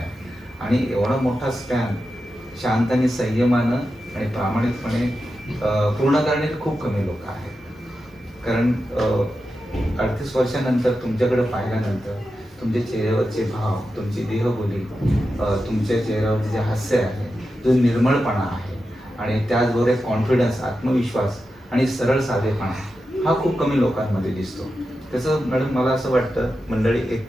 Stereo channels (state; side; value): normal; both; correlation 0.90